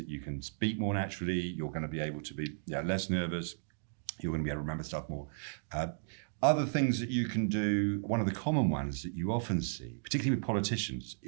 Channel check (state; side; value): silent; left; digital silence